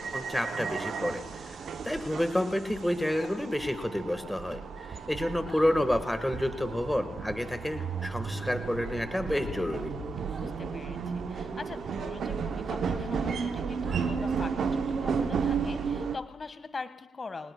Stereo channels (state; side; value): normal; both; correlation 0.88